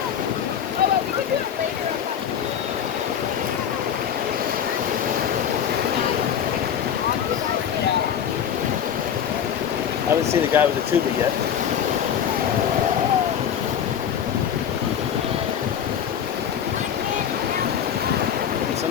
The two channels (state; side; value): quieter; right; 8.8 dB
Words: I haven't seen the guy with the tuba yet. And